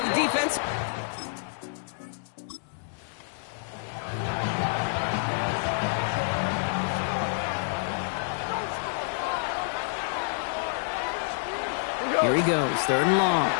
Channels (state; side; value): silent; right; digital silence